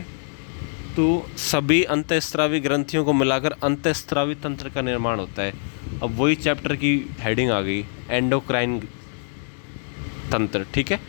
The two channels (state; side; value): silent; right; 63 dB below the other